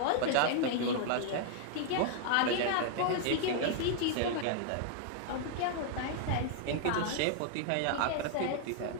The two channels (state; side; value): different; both; correlation 0.00